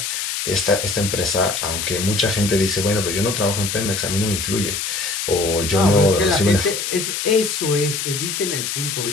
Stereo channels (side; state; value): left; noise; hiss, 3 dB below the sound